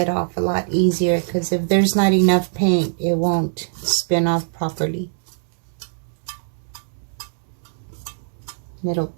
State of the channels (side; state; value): left; silent; digital silence